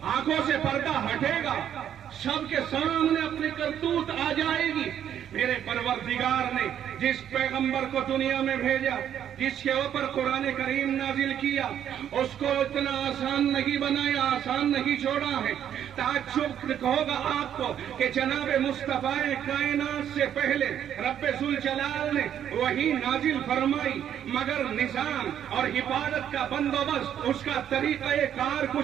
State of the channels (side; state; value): left; quieter; 9.8 dB